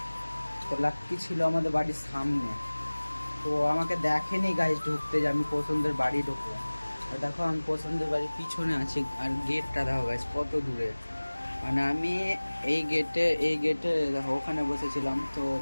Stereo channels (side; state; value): both; inverted; correlation -1.00